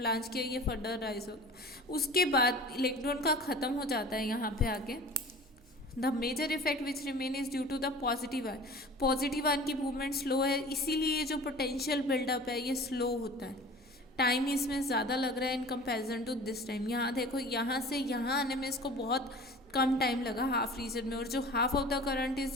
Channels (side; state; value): right; noise; hum, 27 dB below the sound